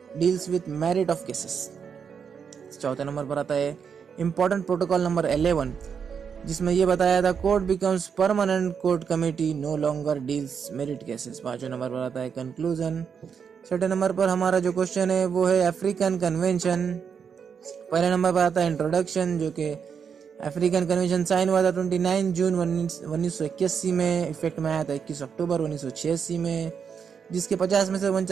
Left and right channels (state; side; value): quieter; left; 6.8 dB